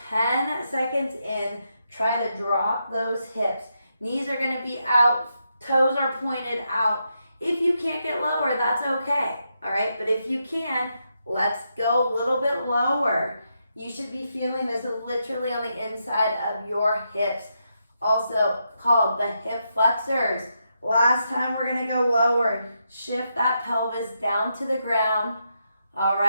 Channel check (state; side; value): inverted; both; correlation -0.82